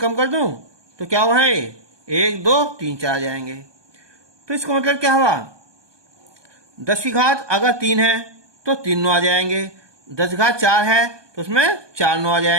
कम कर दूं तो क्या हुआ है 1 2 3 4 आ जाएंगे। तो इसका मतलब क्या हुआ, 10 अगर 3 है तो 3 9 आ जाएंगे, 10 है तो उसमें 4 9 आ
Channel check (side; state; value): left; late; 1.2 ms